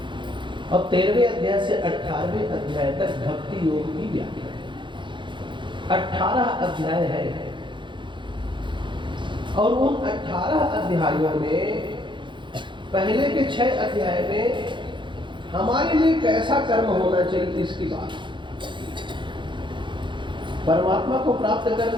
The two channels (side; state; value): left; late; 0.23 ms